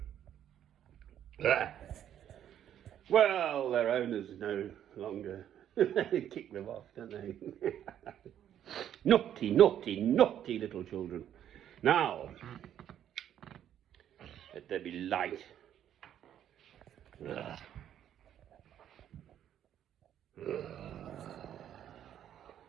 Well, their owners no longer kick them off, don't they? Naughty, naughty, naughty little children. Now, let there be light.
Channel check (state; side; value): quieter; left; 10.4 dB